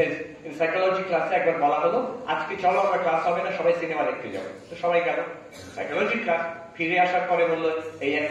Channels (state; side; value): identical; both; correlation 1.00